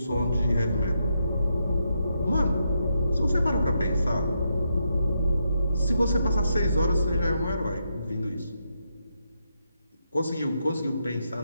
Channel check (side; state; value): both; inverted; correlation -0.81